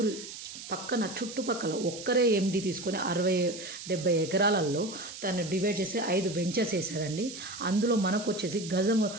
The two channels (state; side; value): noise; right; hiss, 11 dB below the sound